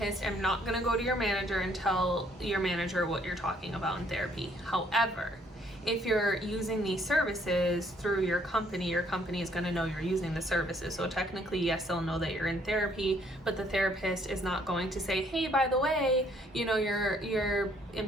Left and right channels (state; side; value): normal; both; correlation 0.65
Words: am not going to go to your manager and tell your manager what you're talking about in therapy. However, if you're using these services through your company is going to know you're using the services. So technically, yes, they'll know that you're in therapy, but the therapist is not going to say, hey, by the way, your